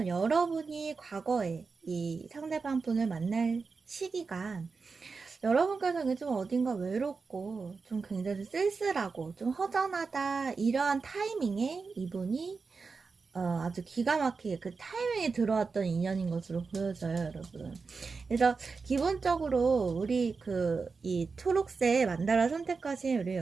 여러분이 과거에 이 상대방 분을 만날 시기가 여러분께서는 좀 어딘가 외롭고 좀 굉장히 쓸쓸하고 좀 허전하다 이러한 타이밍에 이분이 아주 기가 막히게 그 타이밍에 들어왔던 인연인 것으로 보여져요, 여러분. 그래서 기본적으로 우리 이 초록색 만다라 선택하신 우리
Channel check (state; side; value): quieter; left; 4.7 dB